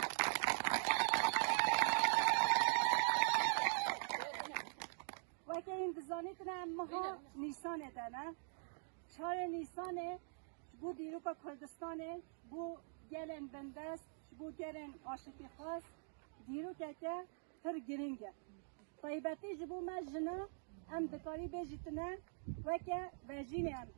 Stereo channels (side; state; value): left; silent; digital silence